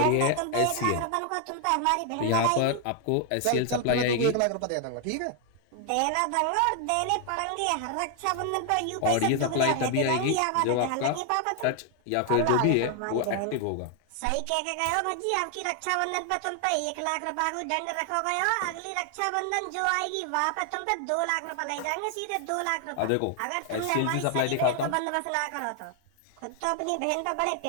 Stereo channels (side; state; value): both; different; correlation 0.00